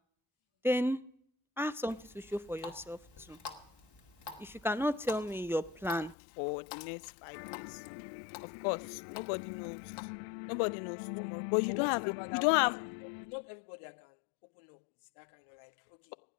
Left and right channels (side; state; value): right; drops out; at 6.2 s